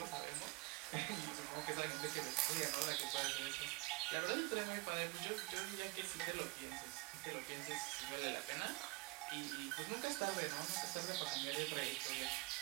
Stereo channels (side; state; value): left; quieter; 26.1 dB